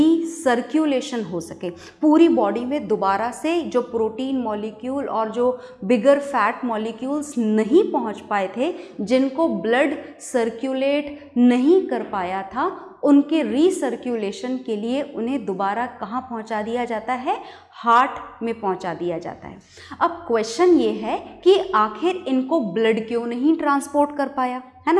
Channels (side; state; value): both; identical; correlation 1.00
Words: हो सके। पूरी बॉडी में दोबारा से जो प्रोटीन मॉलिक्यूल और जो बिगर फैट मॉलिक्यूल्स नहीं पहुंच पाए थे, जिनको ब्लड सर्क्यूलेट नहीं कर पाया था, उनके रीसर्क्यूलेशन के लिए उन्हें दोबारा कहाँ पहुँचा दिया जाता है? हार्ट में पहुँचा दिया जाता है। अब क्वेश्चन ये है कि आखिर इनको ब्लड क्यों नहीं ट्रांसपोर्ट कर पाया, है ना?